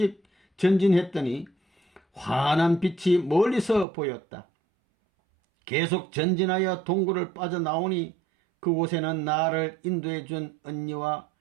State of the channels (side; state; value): left; drops out; at 3.9 s